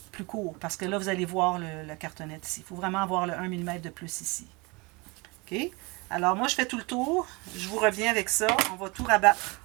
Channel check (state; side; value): quieter; left; 27.0 dB